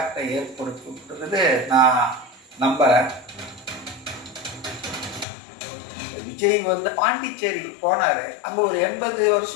ஏற்படுத்தும்ன்றது நான் நம்புறேன். விஜய் வந்து பாண்டிச்சேரிக்கு போனாரு. அங்க ஒரு 80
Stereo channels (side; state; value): right; drops out; at 5.2 s